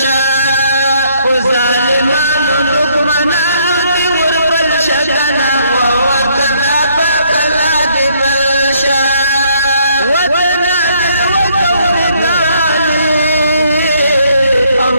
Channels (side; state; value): both; inverted; correlation -0.68